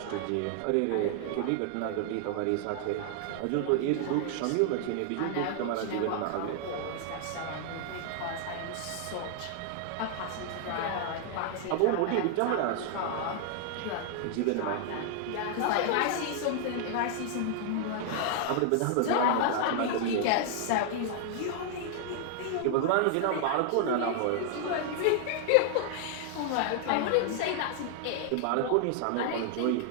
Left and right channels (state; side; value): different; both; correlation 0.00